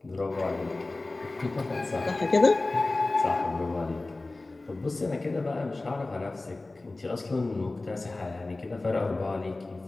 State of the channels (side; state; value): right; quieter; 3.1 dB